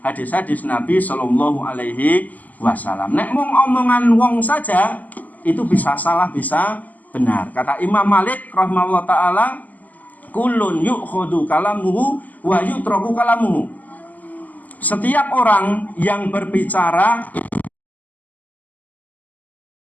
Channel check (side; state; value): right; late; 0.080 ms